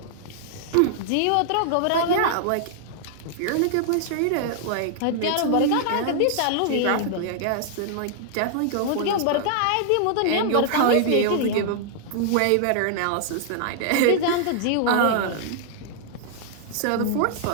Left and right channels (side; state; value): both; different; correlation -0.01